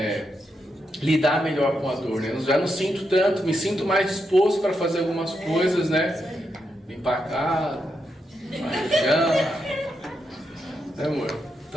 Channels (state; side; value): normal; both; correlation 0.83